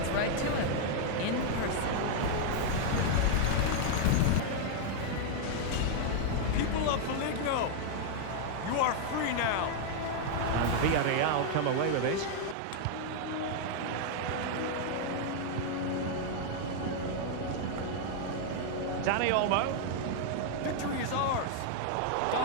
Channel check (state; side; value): different; both; correlation 0.00